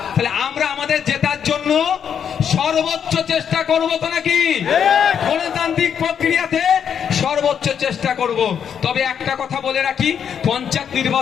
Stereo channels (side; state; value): right; quieter; 8.0 dB